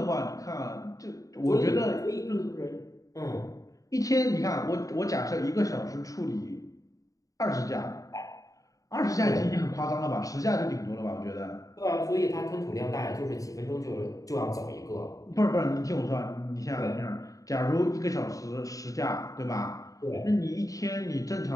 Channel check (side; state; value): right; late; 0.16 ms